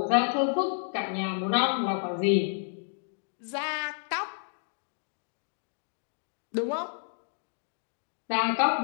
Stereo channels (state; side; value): silent; right; digital silence